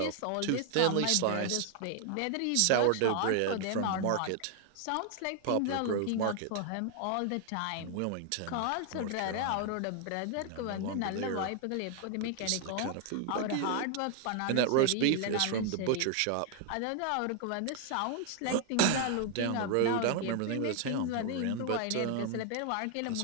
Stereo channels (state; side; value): different; both; correlation 0.00